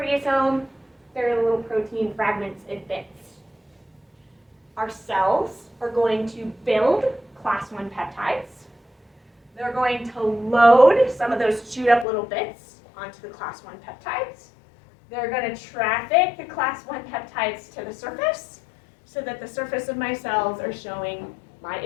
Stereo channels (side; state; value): right; drops out; at 12.1 s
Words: there are little protein fragments and bits. Our cells are going to build class 1 peptides. They're going to load some of those chewed up little bits onto the class 1 peptides. They're going to traffic the class 1 peptides to the surface so that the surface of my cells are showing my